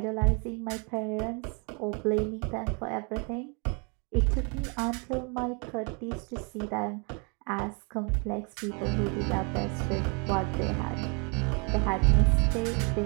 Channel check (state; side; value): quieter; left; 34.4 dB